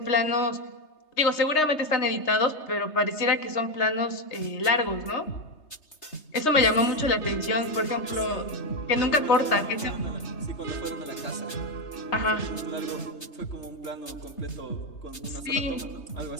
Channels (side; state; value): right; late; 3.2 ms